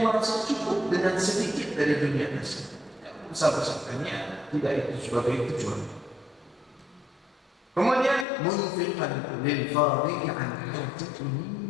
merasa cukup dengan sedikit dari dunia tersebut. Besar-besarkannya tidak itu sebagai tujuan. Kemudian munfiqan lil fadhi'i an hajatihi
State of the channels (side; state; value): right; drops out; at 8.2 s